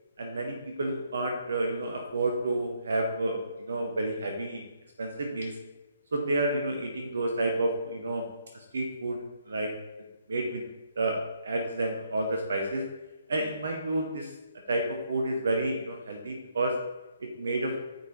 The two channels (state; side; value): inverted; both; correlation -0.74